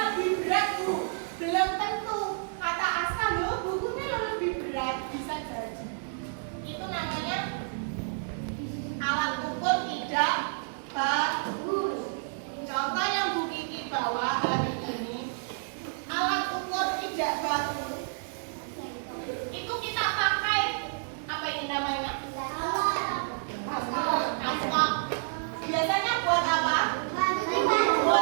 lebih berat Bu, belum tentu. Kata Aska loh bukunya lebih berat, bisa jadi. Itu namanya alat ukur tidak bagus. Contoh yang Bu Kiki bawa hari ini, alat ukur tidak bagus. Itu kita pakai apa ini namanya? Aspak. Biasanya buat apa?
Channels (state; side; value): silent; left; digital silence